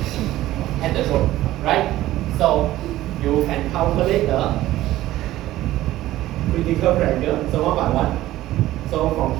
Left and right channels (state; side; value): quieter; left; 15.3 dB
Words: at the choke, right? So you can calculate the critical pressure, so 1 by 1. So from